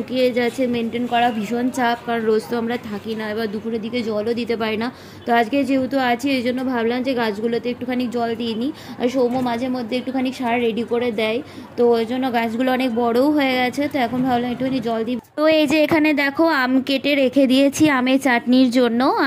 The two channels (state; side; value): identical; both; correlation 1.00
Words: যাচ্ছে, মেনটেন করা ভীষণ চাপ, কারণ রোজ তো আমরা থাকি না, এবার দুপুরের দিকে জলও দিতে পারি না। তো আজকে যেহেতু আছি, এই জন্য ভাবলাম যে গাছগুলোতে একটুখানি জল দিয়ে নিই। আর সৌম্য মাঝে মধ্যে একটুখানি সার রেডি করে দেয়, তো ওই জন্য গাছগুলো অনেক বড়ও হয়ে গেছে। তো এখন ভাবলাম একটুখানি জল দিই। তো এই যে এখানে দেখো আম কেটে রেখে দিয়েছি আমের চাটনির জন্য,